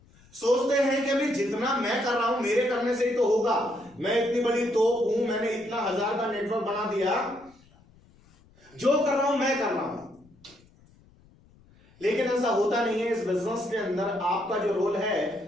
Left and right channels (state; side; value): noise; left; rumble, 29 dB below the sound